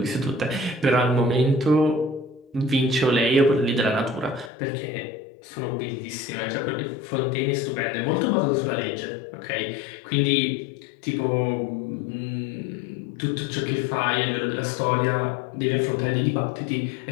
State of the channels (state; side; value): drops out; right; at 4.5 s